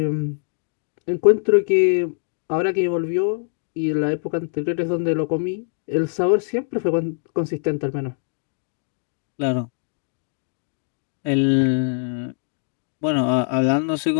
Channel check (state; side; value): silent; right; digital silence